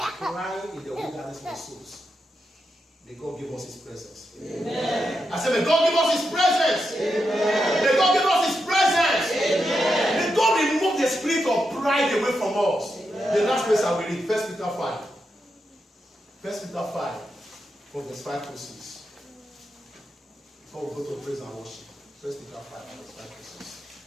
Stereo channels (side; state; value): both; normal; correlation 0.86